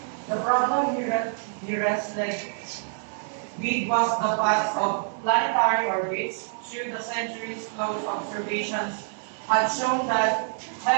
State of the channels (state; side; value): silent; left; digital silence